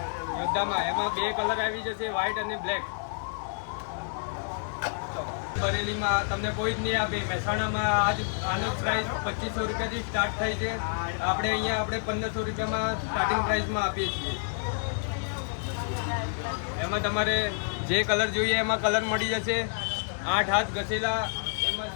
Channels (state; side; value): silent; right; digital silence